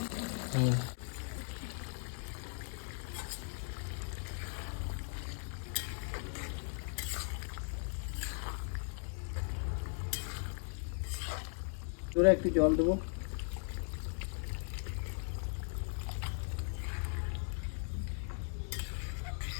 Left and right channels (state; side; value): silent; right; 52 dB below the other